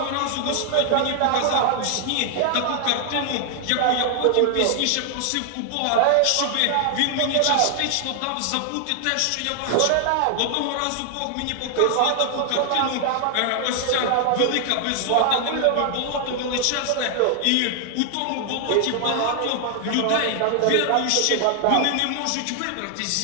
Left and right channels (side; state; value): both; different; correlation 0.00